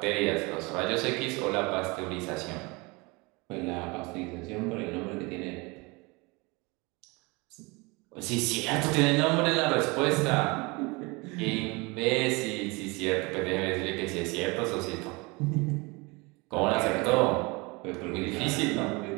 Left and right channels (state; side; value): quieter; left; 26.2 dB